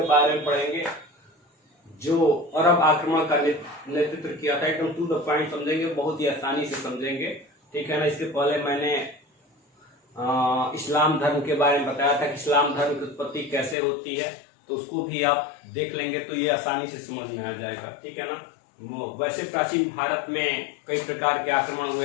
बारे में पढ़ेंगे, जो अरब आक्रमण का नेतृत्व किया था। एकदम टू द पॉइंट समझेंगे, बहुत ही आसानी से समझेंगे, ठीक है ना। इसके पहले मैंने इस्लाम धर्म के बारे में बताया था कि इस्लाम धर्म की उत्पत्ति कैसे होती है, तो उसको भी आप देख लेंगे तो ये आसानी से समझ में आ जाएगा, ठीक है ना। वैसे प्राचीन भारत में कई प्रकार के आक्रमण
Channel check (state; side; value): drops out; right; at 13.8 s